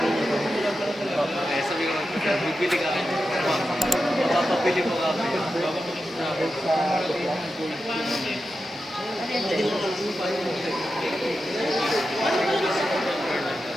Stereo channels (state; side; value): normal; both; correlation 0.90